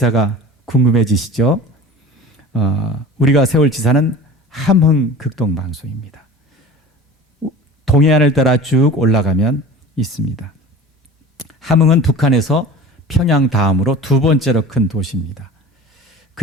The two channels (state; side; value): normal; both; correlation 0.38